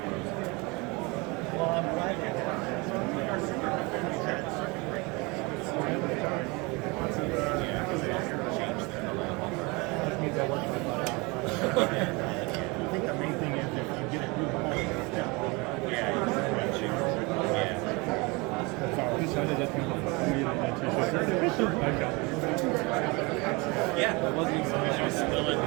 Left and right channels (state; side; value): quieter; left; 26.8 dB